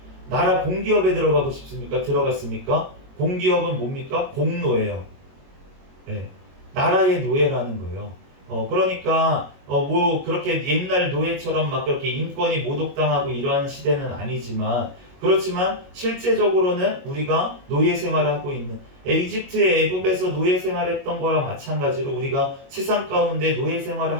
나라 공기업에 들어가고 싶습니까? 들어갔습니까? 공기업은 뭡니까? 공노예요. 네. 나라의 노예라는 거예요. 그러니까 뭐 그렇게 옛날 노예처럼 막 그렇게 인권이 모독당하고 이러한 시대는 아니지만, 그렇지만 실제적으로는 우리가 노예 생활을 하고 있는, 이집트의 애굽에서 노예 생활했던 거랑 마찬가지로 우리가 세상 가운데 노예 생활을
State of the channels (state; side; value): late; left; 22 ms